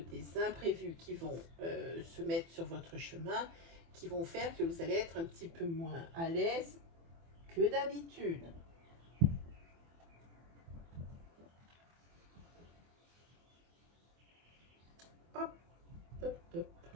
imprévus qui vont se mettre sur votre chemin, qui vont faire que vous allez être un petit peu moins à l'aise que d'habitude. Hop, hop, hop.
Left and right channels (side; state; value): left; late; 24 ms